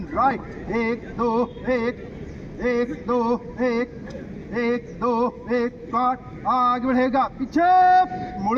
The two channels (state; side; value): identical; both; correlation 1.00